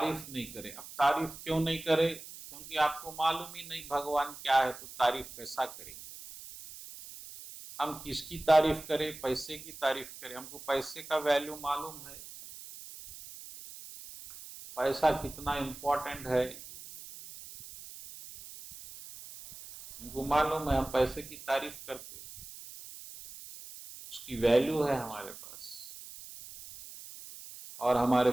नहीं करें। अब तारीफ क्यों नहीं करें? क्योंकि आपको मालूम ही नहीं भगवान क्या है, तो तारीफ कैसा करेंगे? हम किसकी तारीफ करें? पैसे की तारीफ करें? हमको पैसे का वैल्यू मालूम है, पैसा कितना इंपॉर्टेंट है हमको मालूम है। हम पैसे की तारीफ करते, उसकी वैल्यू है हमारे पास, और हमारे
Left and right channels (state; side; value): noise; right; hiss, 14 dB below the sound